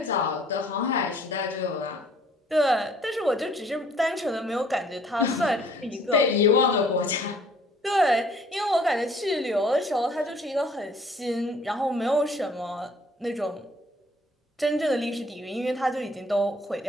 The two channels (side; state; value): both; normal; correlation 0.58